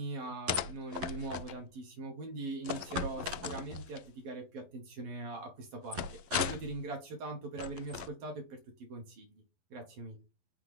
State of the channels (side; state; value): left; late; 11 ms